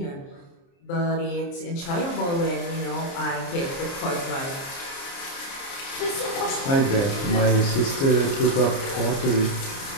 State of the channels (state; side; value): late; right; 29 ms